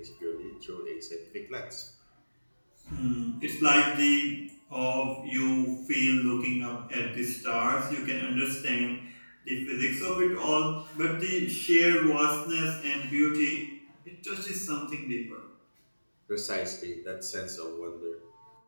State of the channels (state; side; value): inverted; both; correlation -1.00